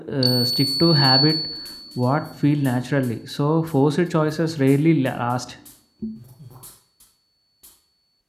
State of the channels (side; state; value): both; identical; correlation 1.00